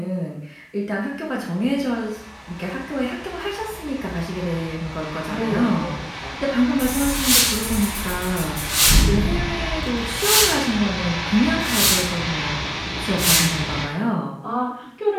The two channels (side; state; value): both; identical; correlation 1.00